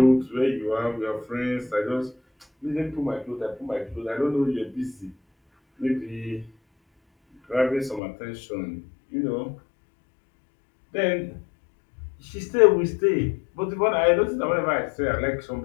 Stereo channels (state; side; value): drops out; right; at 8.0 s